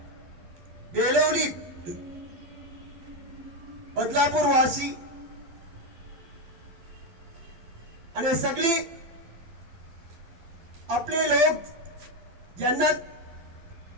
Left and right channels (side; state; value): left; late; 12 ms